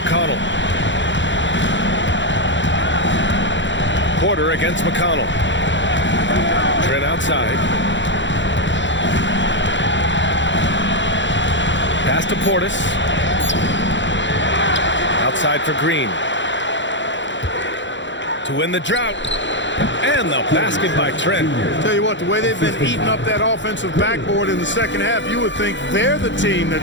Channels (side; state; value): right; late; 0.54 ms